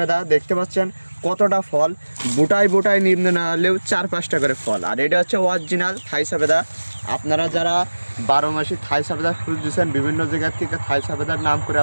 দেখতে পাচ্ছেন কতটা ফল, বুটায় বুটায় নিম্ন না হলেও 4-5টা করে ফল। আর এটা হচ্ছে অরিজিনাল থাই সবেদা। আপনারা যারা 12 মাসি থাই সবেদা খুঁজছেন, বিভিন্ন জায়গার থেকে থাই সবেদার নাম করে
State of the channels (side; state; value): both; inverted; correlation -1.00